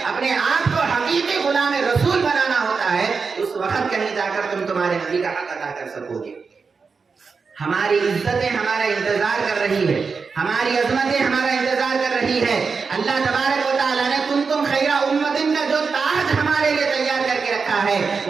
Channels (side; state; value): left; quieter; 5.0 dB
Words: اپنے آپ کو حقیقی غلام رسول بنانا ہوتا ہے. اس وقت کہیں جا کر تم تمہارے نبی کا حق ادا کر سکو گے. ہماری عزتیں ہمارا انتظار کر رہی ہے, ہماری عظمتیں ہمارا انتظار کر رہی ہے. اللہ تبارک و تعالیٰ نے کنتم خیر امت کا جو تاج ہمارے لیے تیار کر کے رکھا ہے